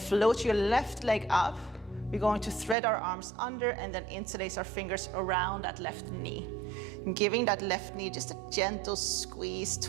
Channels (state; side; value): drops out; left; at 2.8 s